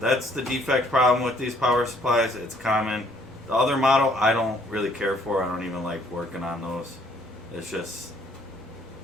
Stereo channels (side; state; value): both; normal; correlation 0.64